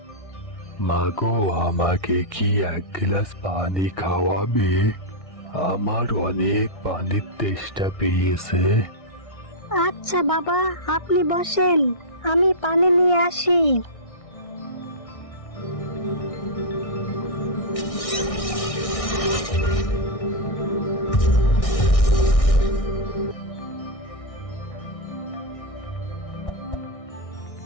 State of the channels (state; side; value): late; right; 1.6 ms